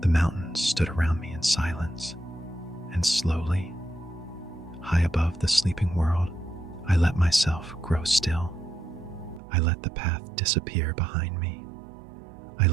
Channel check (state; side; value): drops out; left; at 9.4 s